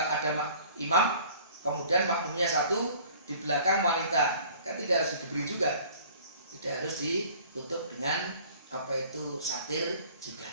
imam, kemudian makmumnya satu, di belakang wanita, kan tidak harus diberi juga. Tidak harus ditutup dengan itu satir juga.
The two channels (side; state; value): both; inverted; correlation -0.49